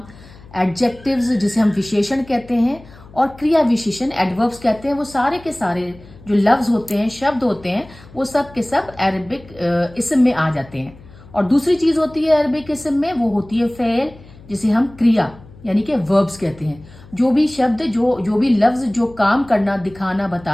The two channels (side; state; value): left; noise; hum, 22 dB below the sound